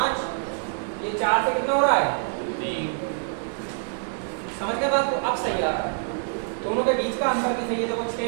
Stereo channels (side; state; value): left; silent; 60 dB below the other